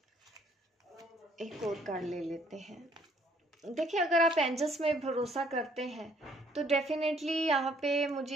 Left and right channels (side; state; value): both; normal; correlation 0.63